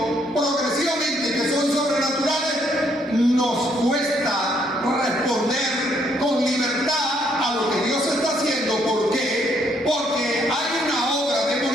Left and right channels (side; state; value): both; normal; correlation 0.70